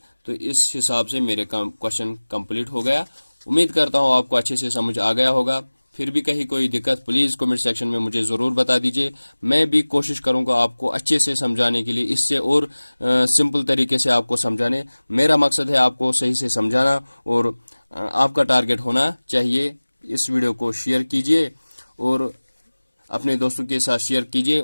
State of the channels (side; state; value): both; inverted; correlation -1.00